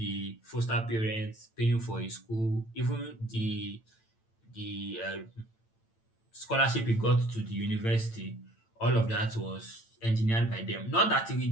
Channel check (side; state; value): right; late; 8.9 ms